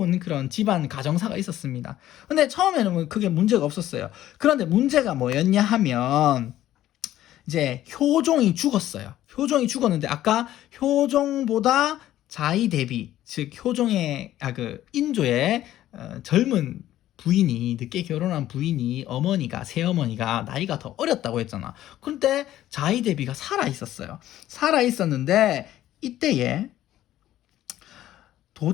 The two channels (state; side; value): quieter; right; 13.4 dB